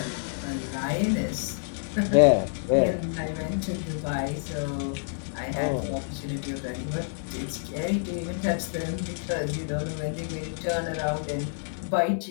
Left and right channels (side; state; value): right; silent; digital silence